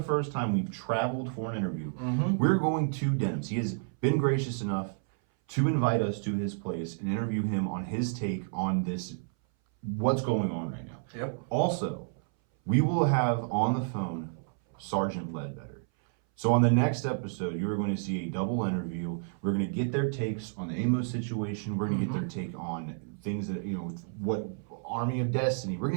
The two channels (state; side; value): silent; left; 58 dB below the other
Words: first time we've traveled for an interview. Mm-hmm. We're going to Denim's. He has been gracious enough to invite us to his place and interview him on his take on this, what's going on right now. Yep. Also, we will have on the phone Sergeant Ledbetter. So on the next episode, you are going to see a double interview. We're going to get their takes on the Amos situation. We're going to get their take on things that, what Army of Destiny. We're